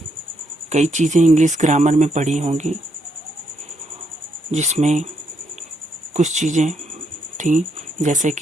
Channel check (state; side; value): normal; both; correlation 0.76